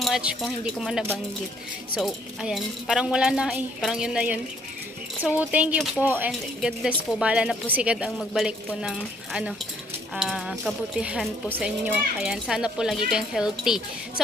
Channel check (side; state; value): both; normal; correlation 0.65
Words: much kung hindi ko man nabanggit. So, ayan. Parang wala na Parang yun na yun. So, thank you po and God bless po. Bahala na po si God ang magbalik po ng kabutihan po sa inyo. Ayan. Sana po lagi kayong healthy.